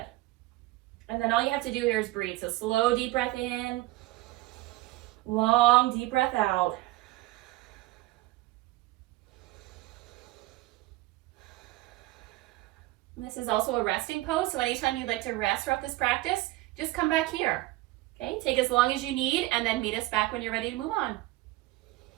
And then all you have to do here is breathe. So slow, deep breath in. Long, deep breath out. And this is also a resting pose. So anytime you'd like to rest throughout this practice, just come back here. Okay, take as long as you need and then meet us back when you're ready to move on.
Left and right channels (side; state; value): left; quieter; 18.6 dB